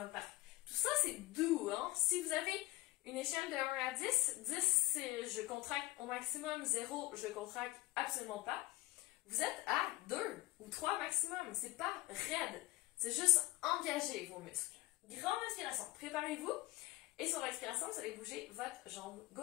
Tout ça, c'est doux, hein? Si vous avez une échelle de 1 à 10, 10 c'est je contracte au maximum, 0 je contracte absolument pas. Vous êtes à 2 ou 3 maximum, c'est pas raide, c'est juste engager vos muscles. Grande inspiration, préparez-vous et sur l'expiration, vous allez bouger votre jambe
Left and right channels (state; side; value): quieter; right; 19.4 dB